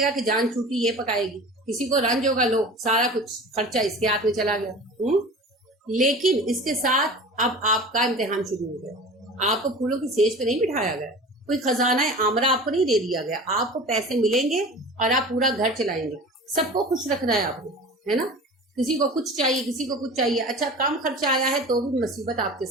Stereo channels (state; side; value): normal; both; correlation 0.37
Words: گا کہ جان چھوٹی یہ پکائے گی, کسی کو رنج ہوگا, لو سارا کچھ خرچہ اس کے ہاتھ میں چلا گیا. لیکن اس کے ساتھ اب آپ کا امتحان شروع ہو گیا. آپ کو پھولوں کی سیج پہ نہیں بٹھایا گیا, کوئی خزانہ آمرہ آپ کو نہیں دے دیا گیا. آپ کو پیسے ملیں گے اور آپ پورا گھر چلائیں گے. سب کو خوش رکھنا ہے آپ کو, ہے نا. کسی کو کچھ چاہیے, کسی کو کچھ چاہیے. اچھا کم خرچہ آیا ہے تو بھی مصیبت آپ کے